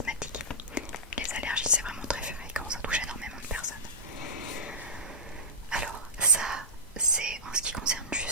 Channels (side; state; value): both; normal; correlation -0.13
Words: Les allergies, c'est vraiment très fréquent, ça touche énormément de personnes. Alors ça, c'est en ce qui concerne